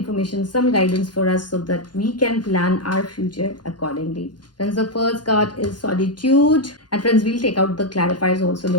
some guidance for us so that we can plan our future accordingly. Friends, the first card is solitude. And friends, we'll take out the clarifiers also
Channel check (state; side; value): late; right; 0.70 ms